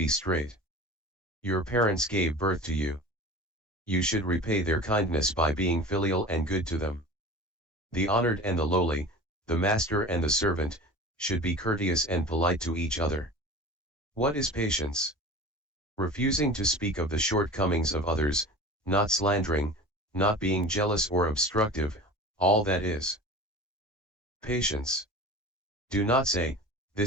straight? Your parents gave birth to you. You should repay their kindness by being filial and good to them. The honored and the lowly, the master and the servant, should be courteous and polite to each other. What is patience? Refusing to speak of the shortcomings of others, not slandering, not being jealous or obstructive, all that is patience. Do not say,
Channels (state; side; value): normal; both; correlation 0.36